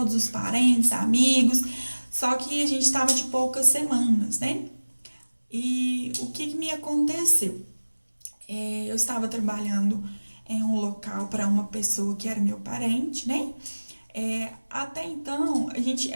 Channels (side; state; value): both; inverted; correlation -1.00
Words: os parentes, amigos. Só que a gente estava de poucas semanas, né? E o que me aconteceu? Eu estava trabalhando em um local para uma pessoa que era meu parente, né? Até então,